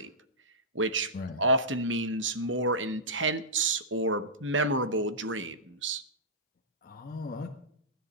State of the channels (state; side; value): normal; both; correlation -0.14